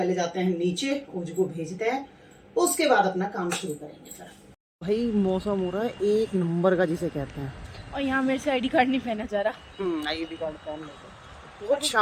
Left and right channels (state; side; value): identical; both; correlation 1.00